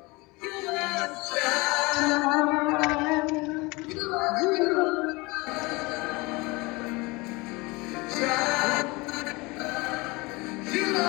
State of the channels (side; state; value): right; quieter; 24.8 dB